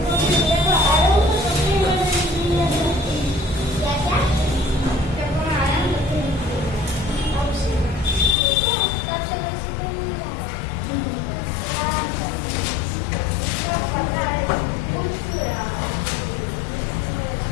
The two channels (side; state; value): right; drops out; at 8.3 s